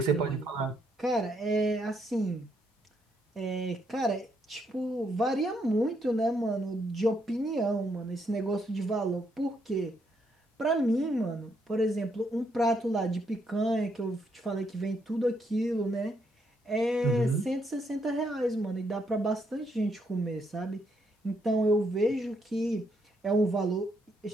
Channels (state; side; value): normal; both; correlation 0.75